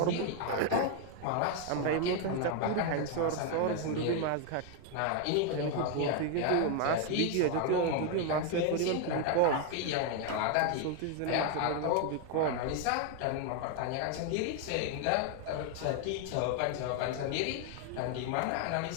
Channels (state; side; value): different; both; correlation 0.01